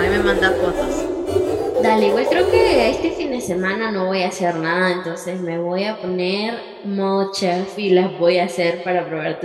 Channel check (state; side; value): identical; both; correlation 1.00